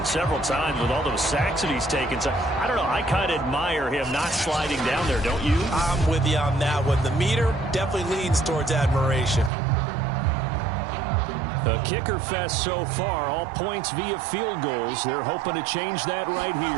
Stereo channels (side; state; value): left; drops out; at 9.5 s